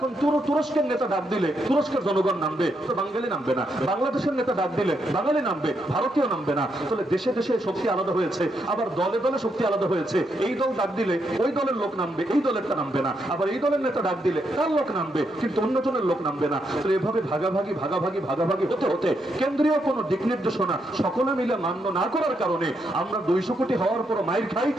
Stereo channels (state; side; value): normal; both; correlation 0.79